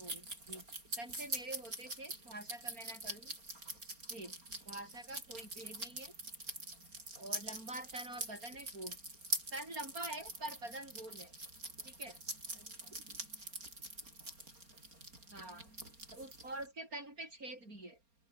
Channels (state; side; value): late; left; 4.3 ms